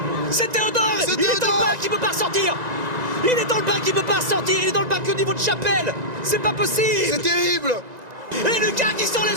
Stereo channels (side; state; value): left; late; 1.9 ms